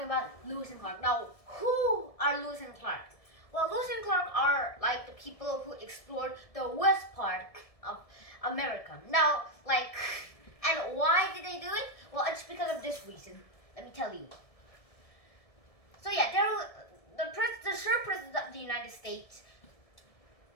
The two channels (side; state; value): right; late; 1.7 ms